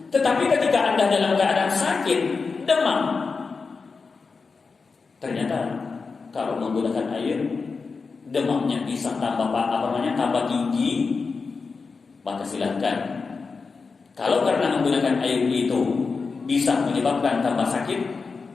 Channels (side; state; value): right; quieter; 4.7 dB